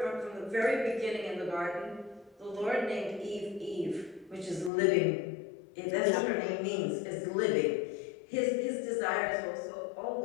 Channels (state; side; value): drops out; right; at 4.7 s